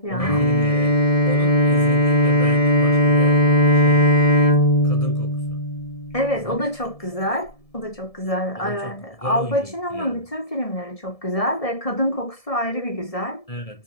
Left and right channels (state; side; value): late; right; 1.7 ms